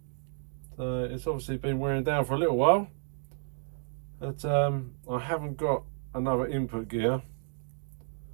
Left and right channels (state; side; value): silent; left; 57 dB below the other